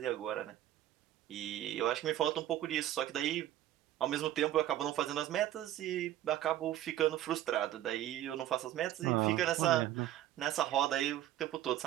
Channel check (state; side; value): quieter; left; 12.8 dB